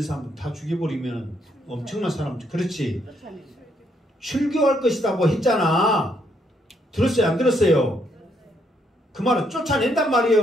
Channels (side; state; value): both; normal; correlation 0.73